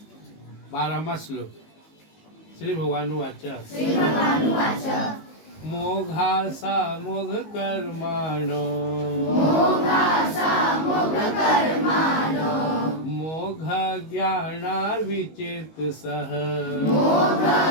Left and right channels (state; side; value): late; right; 19 ms